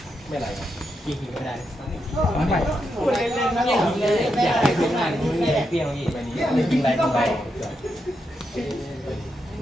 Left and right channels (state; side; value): normal; both; correlation 0.83